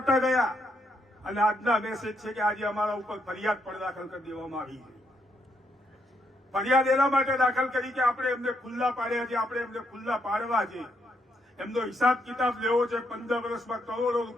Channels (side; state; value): both; normal; correlation 0.77